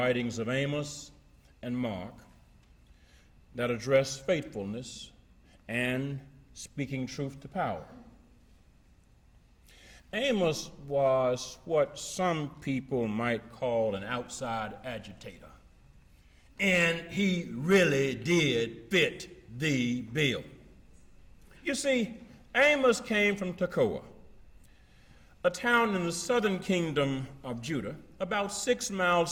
of Amos and Mark that address faithfulness and speaking truth to power. Amos was what some people might call an outside agitator, and he really did fit the bill. You see, Amos came from Tekoa, a town in the southern kingdom of Judah, about 6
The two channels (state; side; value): identical; both; correlation 1.00